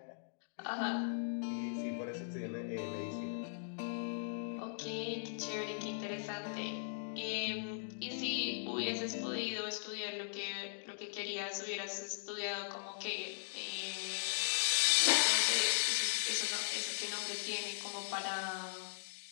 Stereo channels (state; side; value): silent; right; digital silence